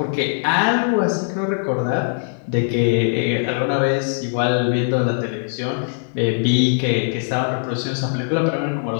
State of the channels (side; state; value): right; silent; digital silence